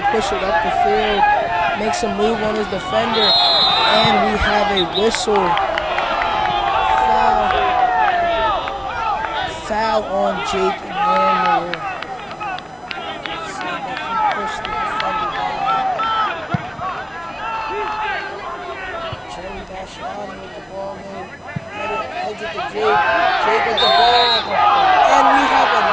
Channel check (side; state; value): both; identical; correlation 1.00